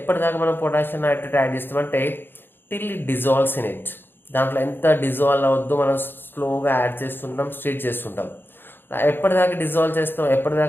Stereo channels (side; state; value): right; late; 0.10 ms